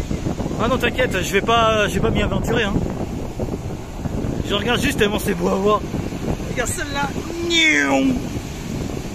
Ah non t'inquiète, je vais pas m'y aventurer hein. Je regarde juste tellement c'est beau à voir. Regarde celle-là.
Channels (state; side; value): identical; both; correlation 1.00